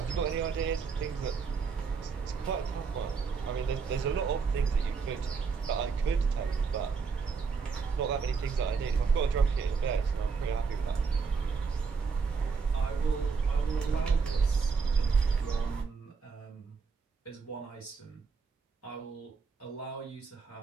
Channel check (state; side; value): quieter; left; 5.3 dB